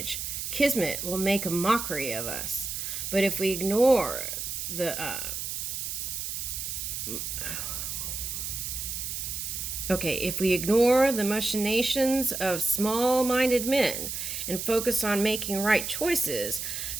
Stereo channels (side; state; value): right; noise; hiss, 4 dB below the sound